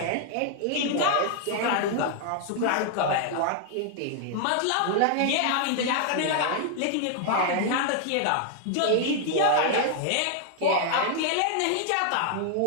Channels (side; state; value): both; different; correlation 0.00